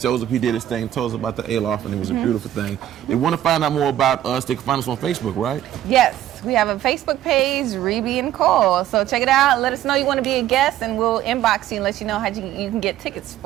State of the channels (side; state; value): left; quieter; 12.2 dB